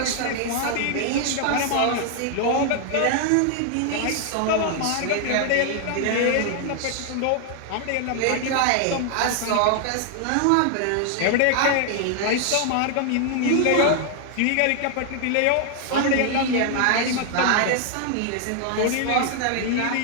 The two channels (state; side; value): different; both; correlation 0.00